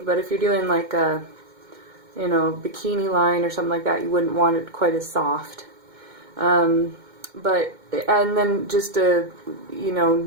But if you're doing like a bikini line or something like that, you wouldn't want it quite as soft. And then just a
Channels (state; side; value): late; left; 2.2 ms